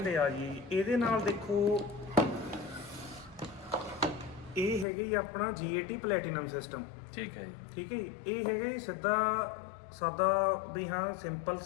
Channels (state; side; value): drops out; right; at 4.9 s